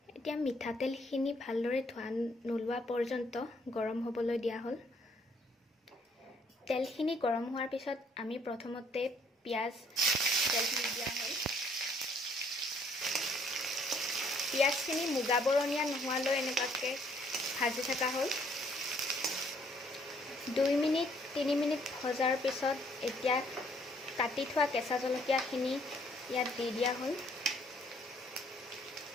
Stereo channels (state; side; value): normal; both; correlation 0.65